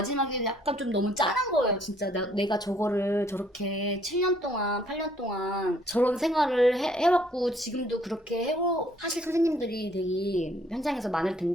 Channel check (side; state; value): both; normal; correlation 0.63